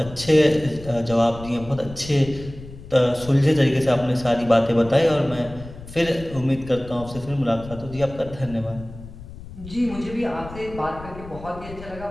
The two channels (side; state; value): left; noise; rumble, 15 dB below the sound